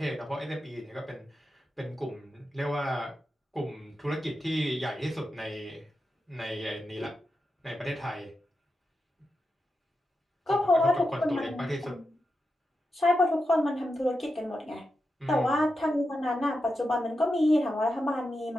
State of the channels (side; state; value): both; normal; correlation 0.88